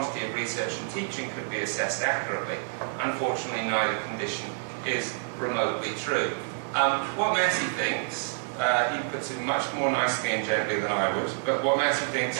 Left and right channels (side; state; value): left; silent; 59 dB below the other